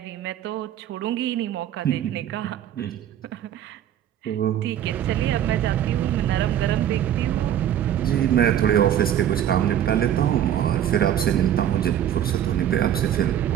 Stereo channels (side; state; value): left; quieter; 10.6 dB